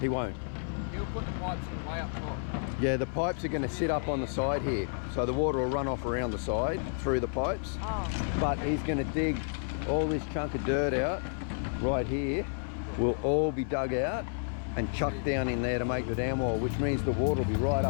won't. He'll put the pipes in way up top. Yeah, the pipes are going to sit up on the side here. So the water will run off around the side through the pipes. Oh. But he's going to dig all this chunk of dirt out right here. Will all be dug out and chucked down in there to make the dam wall, which means the water will be right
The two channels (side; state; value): right; silent; 57 dB below the other